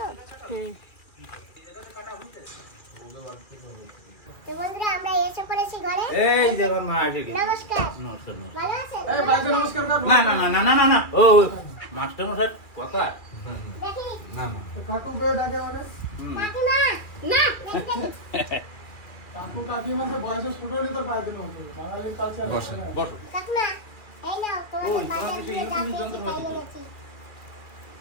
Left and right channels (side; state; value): right; late; 2.4 ms